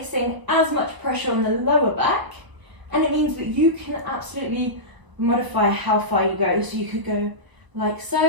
as much pressure on the lower back, and it means that you can absolutely modify how far you go. So you could go like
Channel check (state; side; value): late; left; 1.0 ms